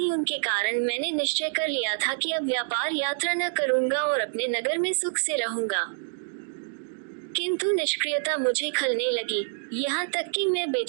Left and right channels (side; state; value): left; silent; digital silence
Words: उनके कारण मैंने निश्चय कर लिया था कि अब व्यापार यात्रा न करूंगा और अपने नगर में सुख से रहूंगा। किंतु निष्क्रियता मुझे खलने लगी, यहाँ तक कि मैं